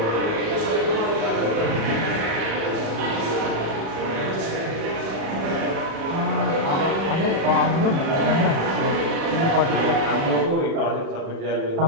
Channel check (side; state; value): left; late; 37 ms